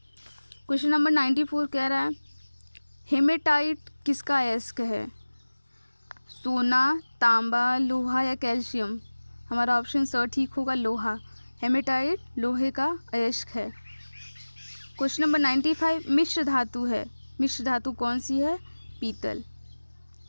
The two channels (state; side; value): inverted; both; correlation -1.00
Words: क्वेश्चन नंबर 94 कह रहा है, हेमेटाइट किसका अयस्क है? सोना, तांबा, लोहा या कैल्शियम। हमारा ऑप्शन स ठीक होगा, लोहा। हेमेटाइट लोहे का अयस्क है। क्वेश्चन नंबर 95, मिश्र धातु है। मिश्र धातु कौन सी है? पीतल।